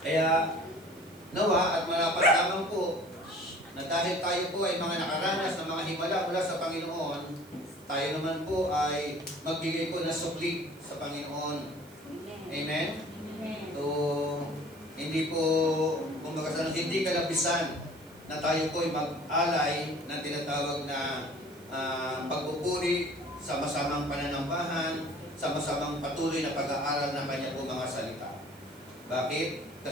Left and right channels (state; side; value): noise; right; hiss, 25 dB below the sound